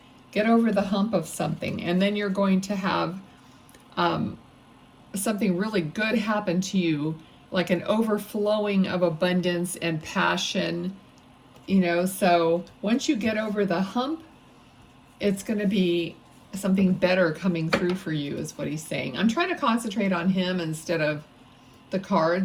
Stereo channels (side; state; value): both; identical; correlation 1.00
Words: get over the hump of something, and then you're going to have something really good happen to you, like an overflowing of abundance and passion, you know. So once you get over the hump, it's going to be something better coming through for you, is what he's saying. I'm trying to concentrate on him instead of the